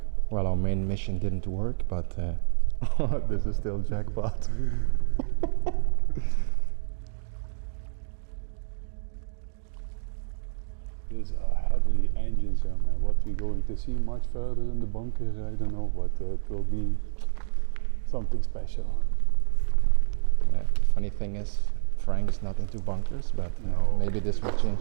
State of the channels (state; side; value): silent; left; 60 dB below the other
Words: Well, our main mission didn't work, but this is still jackpot. These are heavily engines, man. What we're going to see much further in the bunkers, I don't know, but it will be something special. Funny thing is, Frank is not into bunkers, but No. maybe this will